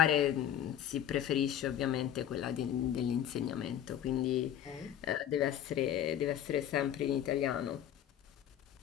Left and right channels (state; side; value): quieter; right; 10.5 dB